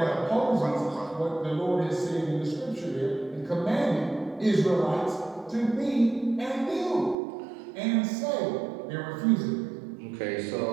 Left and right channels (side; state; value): left; drops out; at 7.2 s